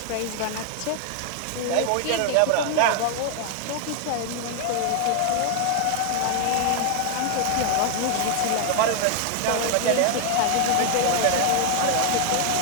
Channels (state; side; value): different; both; correlation 0.00